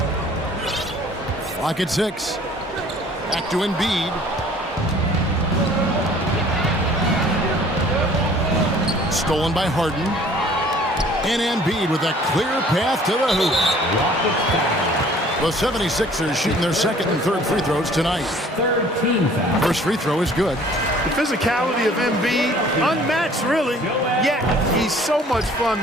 Clock at 6. Back to Embiid. Stolen by Harden. And Embiid with a clear path to the hoop. The 76ers shooting their second and third free throws tonight. First free throw is good. The physicality of Embiid, unmatched really, yet he's so much fun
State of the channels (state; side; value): normal; both; correlation 0.53